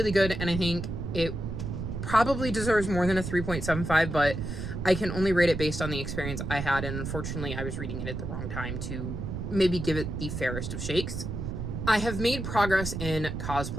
good, and I think it probably deserves more than a 3.75, but I can only rate it based on the experience I had, and unfortunately I was reading it at the wrong time to maybe give it the fairest of shakes. I have made progress in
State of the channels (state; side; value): noise; right; rumble, 5 dB below the sound